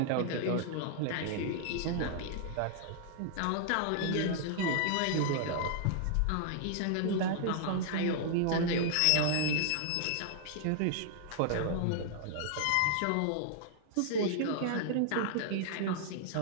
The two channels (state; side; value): different; both; correlation -0.01